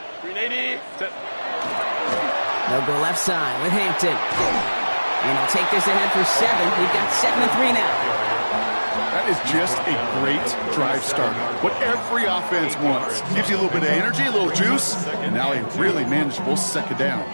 They'll go left side with Hampton. And he'll take this ahead for 7. We've got 7-3 now. That is just a great drive starter. What every offense wants. Gives you a little bit of energy, a little juice, and now a really manageable second down.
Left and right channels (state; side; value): inverted; both; correlation -1.00